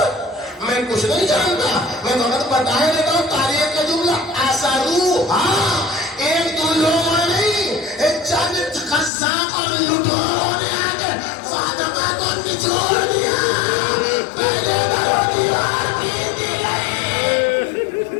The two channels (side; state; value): right; drops out; at 9.1 s